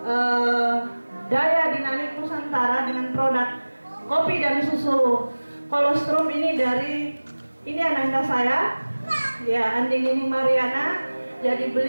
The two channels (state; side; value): inverted; both; correlation -1.00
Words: Daya Dinamik Nusantara dengan produk kopi dan susu kolostrum ini dari ananda saya ya, Andini Mariana. Jadi